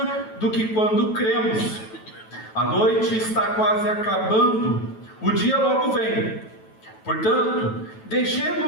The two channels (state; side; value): late; right; 9.2 ms